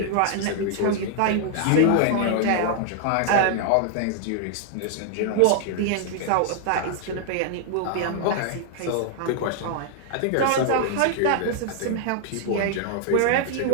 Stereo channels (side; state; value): both; different; correlation 0.00